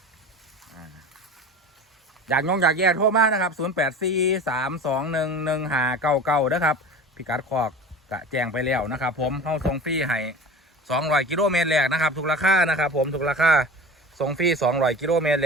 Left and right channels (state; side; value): normal; both; correlation 0.35